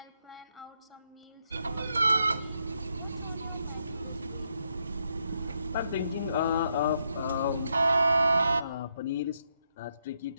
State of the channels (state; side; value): inverted; both; correlation -0.79